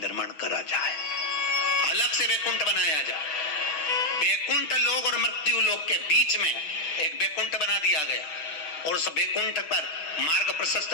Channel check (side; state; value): right; late; 6.2 ms